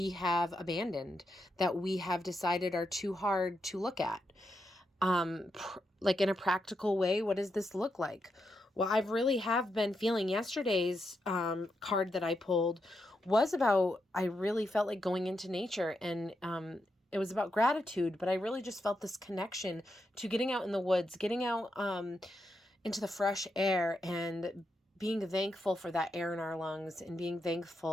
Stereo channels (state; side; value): normal; both; correlation 0.84